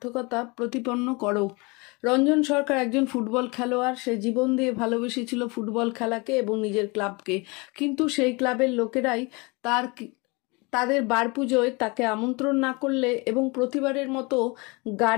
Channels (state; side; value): quieter; right; 27.6 dB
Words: প্রতিপন্ন করো। রঞ্জন সরকার একজন ফুটবল খেলোয়াড়। সে জীবন দিয়ে ভালোবেসেছিল ফুটবল খেলাকে এবং নিজের ক্লাবকে, কিন্তু সেই ক্লাবের লোকেরাই তাদের বার পুজোয় তাকে আমন্ত্রণ না করলে এবং প্রতিবারের মতো